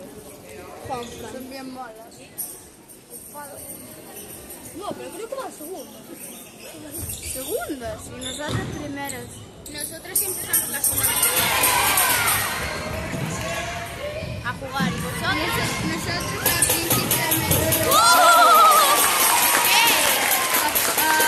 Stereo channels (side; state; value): both; identical; correlation 1.00